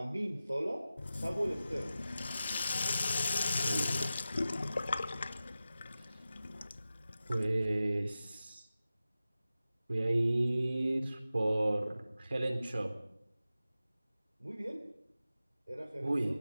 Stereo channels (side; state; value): both; inverted; correlation -0.94